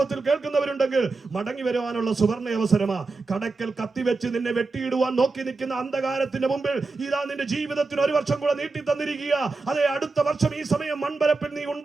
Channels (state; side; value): quieter; left; 3.8 dB